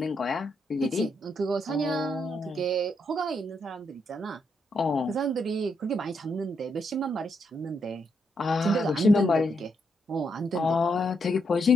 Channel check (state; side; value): normal; both; correlation 0.78